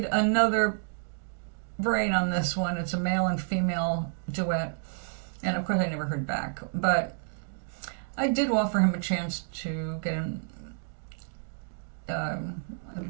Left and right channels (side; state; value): left; silent; digital silence